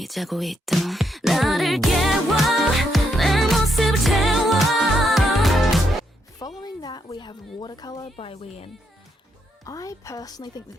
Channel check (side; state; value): both; normal; correlation 0.78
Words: Following that, we have Watercolor by Wheein. I personally think